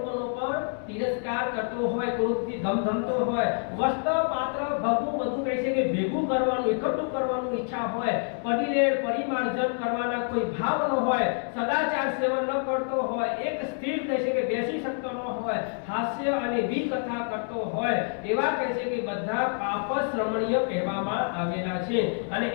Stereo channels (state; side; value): silent; right; 57 dB below the other